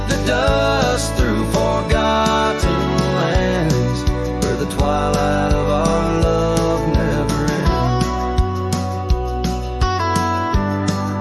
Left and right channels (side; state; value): both; identical; correlation 1.00